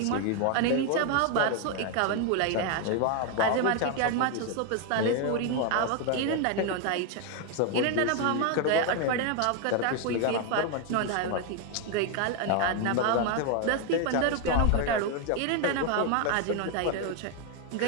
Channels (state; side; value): different; both; correlation 0.01